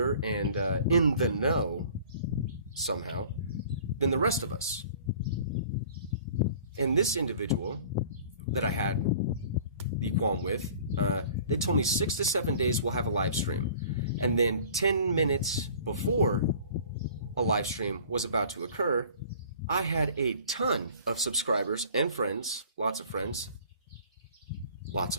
and in the know somehow than the rest of us. And this individual that I had the qualm with, they told me 6 to 7 days we'll have a live stream. And then 10 minutes before a live stream was about to occur, I had a ton of subscribers and friends, lots of friends,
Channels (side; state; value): both; inverted; correlation -0.48